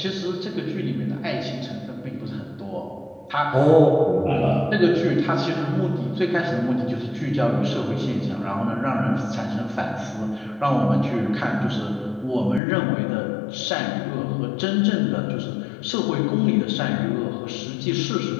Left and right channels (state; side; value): drops out; right; at 12.6 s